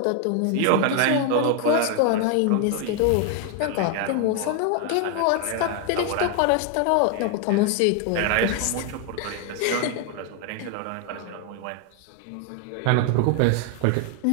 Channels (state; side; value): different; both; correlation 0.00